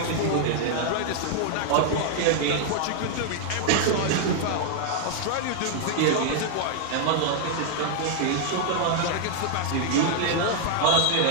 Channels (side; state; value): both; different; correlation 0.00